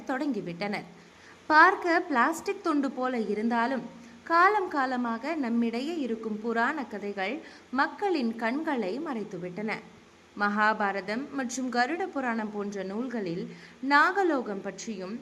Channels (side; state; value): both; identical; correlation 1.00